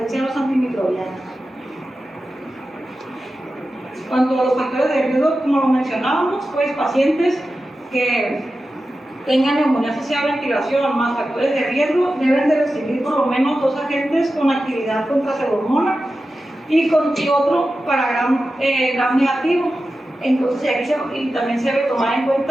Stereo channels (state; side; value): normal; both; correlation 0.93